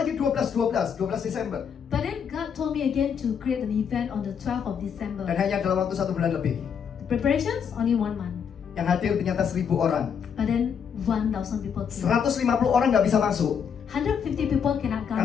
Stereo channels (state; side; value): quieter; right; 7.3 dB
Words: 12 Desember. But then God told me again to create an event on the 12th of December. Dan hanya dalam waktu 1 bulan lebih. Preparations only 1 month. Yang hadir ternyata 1.000 orang. But then 1,000 people came. 150 orang nggak bisa masuk. 150 people cannot come.